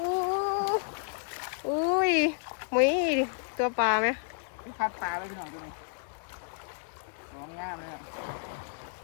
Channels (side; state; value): right; silent; digital silence